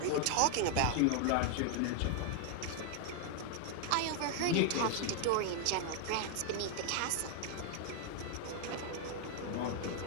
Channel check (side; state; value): both; different; correlation 0.00